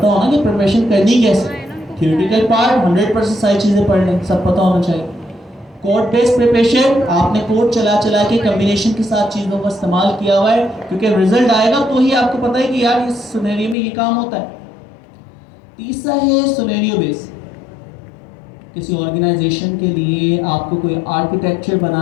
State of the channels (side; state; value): right; drops out; at 13.8 s